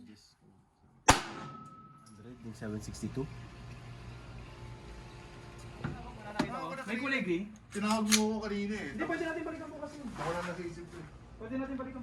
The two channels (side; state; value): both; identical; correlation 1.00